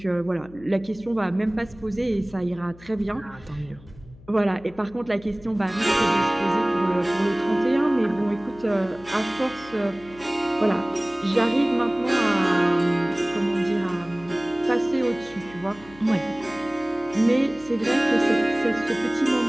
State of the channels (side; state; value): left; noise; hum, 22 dB below the sound